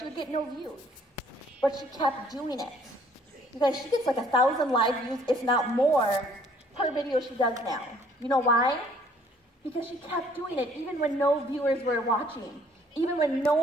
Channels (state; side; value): normal; both; correlation 0.60